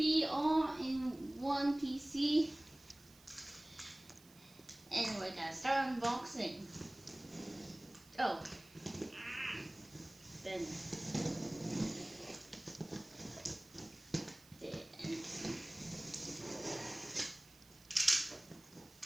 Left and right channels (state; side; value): noise; right; hiss, 24 dB below the sound